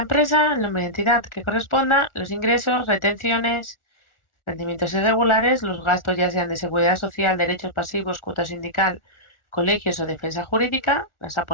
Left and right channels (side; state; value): right; late; 1.4 ms